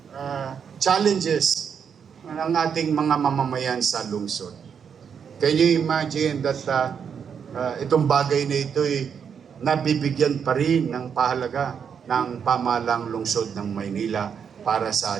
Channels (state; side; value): quieter; left; 7.2 dB